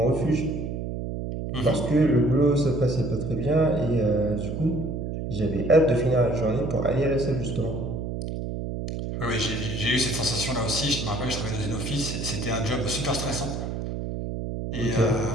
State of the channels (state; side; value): noise; right; hum, 4 dB below the sound